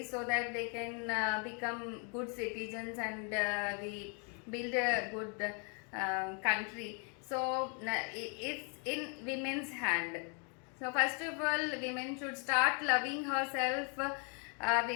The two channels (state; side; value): quieter; right; 38.3 dB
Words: so that they can become good citizens, and we build a good country. So it's in women's hand. So first of all, women should start loving herself.